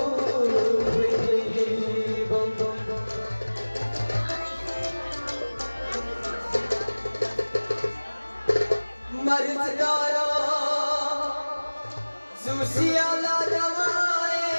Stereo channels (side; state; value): both; inverted; correlation -1.00